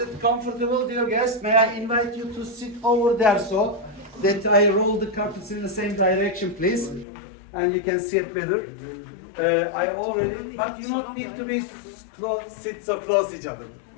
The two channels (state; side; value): drops out; right; at 7.1 s